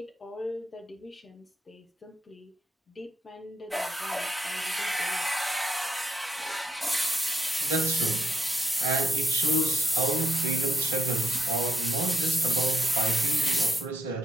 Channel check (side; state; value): both; normal; correlation 0.79